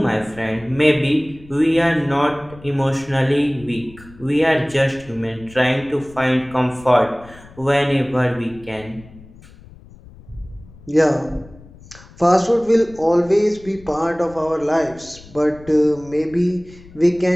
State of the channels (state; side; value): noise; left; rumble, 21 dB below the sound